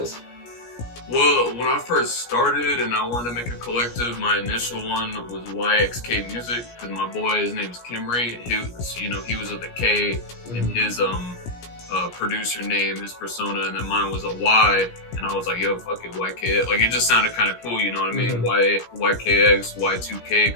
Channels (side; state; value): right; late; 17 ms